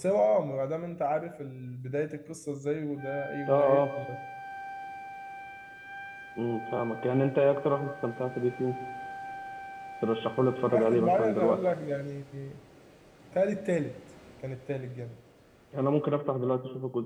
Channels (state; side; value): identical; both; correlation 1.00